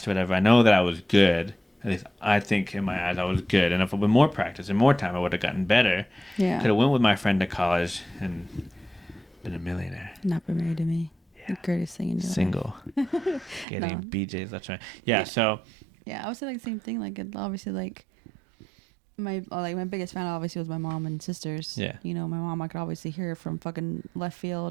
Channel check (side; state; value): left; drops out; at 13.7 s